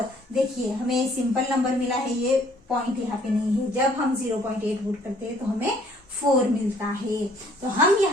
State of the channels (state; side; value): normal; both; correlation 0.60